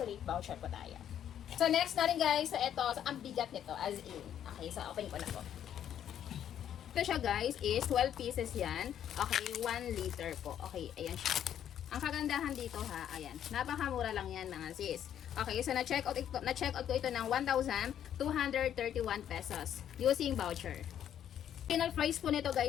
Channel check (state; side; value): quieter; right; 10.0 dB